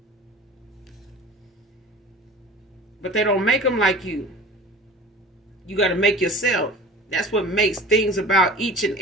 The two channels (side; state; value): both; normal; correlation 0.40